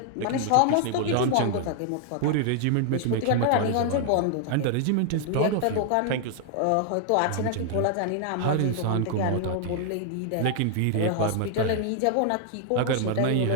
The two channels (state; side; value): different; both; correlation 0.00